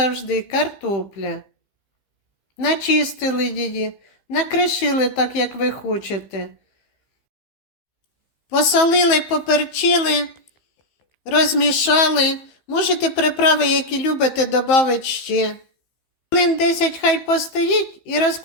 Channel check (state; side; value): late; right; 15 ms